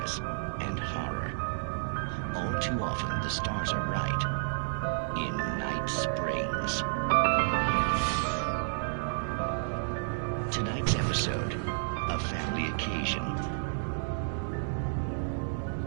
and horror. All too often, the stars are right. In Night Springs. Tonight's episode, a family occasion.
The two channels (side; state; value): left; silent; digital silence